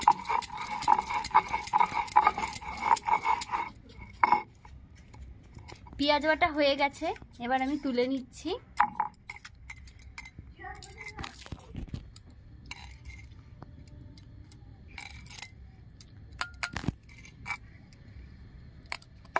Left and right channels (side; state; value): both; identical; correlation 1.00